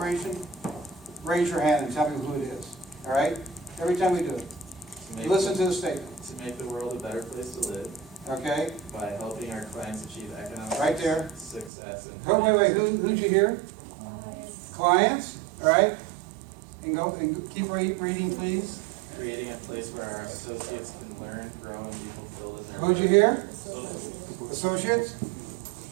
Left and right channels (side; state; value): left; drops out; at 11.7 s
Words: raise your hand and tell me who it is, all right? Every time we do it. Listen to the statement, To make the world a better place to live okay? by helping our clients achieve economic Right there. success and. Oh, wait, who'd you hear? Clients, all right? And keep reading, please. Creating a place where our associates can learn, grow, and be fulfilled in their. Who'd you hear? Social- Associates?